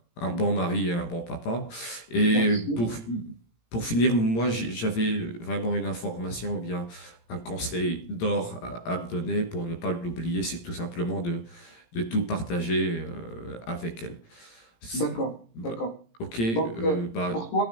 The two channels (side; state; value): right; late; 17 ms